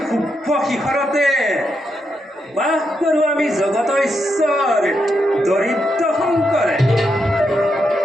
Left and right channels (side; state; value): both; normal; correlation 0.82